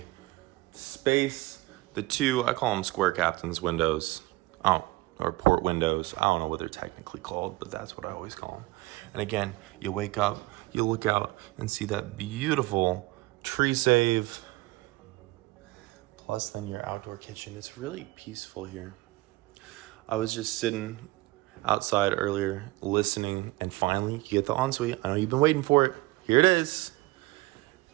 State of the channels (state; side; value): quieter; left; 20.8 dB